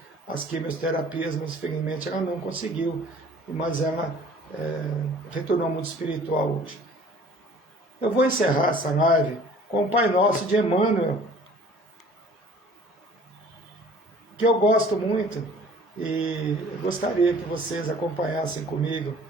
as quimioterapias, mas infelizmente ela não conseguiu, mas ela retornou ao mundo espiritual hoje. Eu vou encerrar essa live com o Pai Nosso de Emmanuel, que eu gosto muito e eu gostaria que vocês acompanhassem comigo,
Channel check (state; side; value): normal; both; correlation 0.51